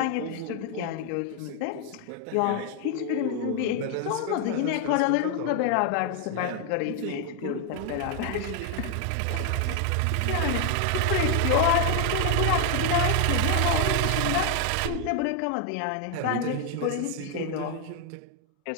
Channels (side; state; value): both; different; correlation 0.01